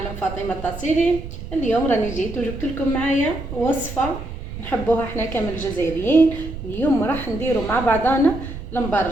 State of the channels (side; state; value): right; noise; rumble, 10 dB below the sound